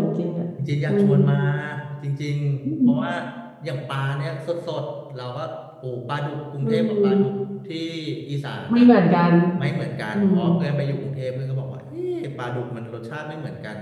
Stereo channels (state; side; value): identical; both; correlation 1.00